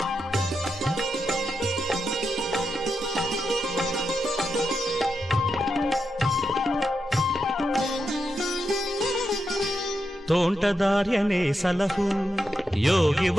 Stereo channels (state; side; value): normal; both; correlation 0.86